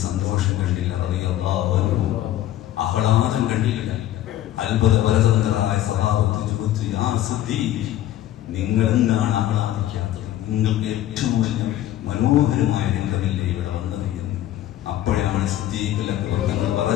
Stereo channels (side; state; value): right; quieter; 13.2 dB